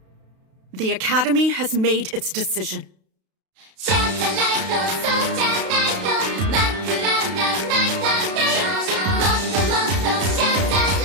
The Academy has made its decision.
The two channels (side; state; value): left; late; 32 ms